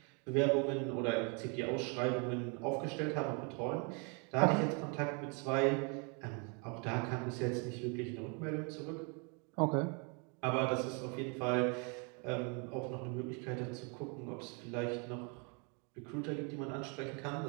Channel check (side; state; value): left; quieter; 35.1 dB